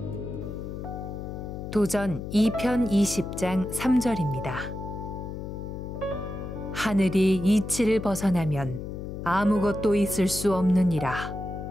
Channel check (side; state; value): left; noise; hum, 7 dB below the sound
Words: 도전 2편 20장 3절입니다. 하늘이 이치를 벗어나면 아무것도 있을 수 없느니라.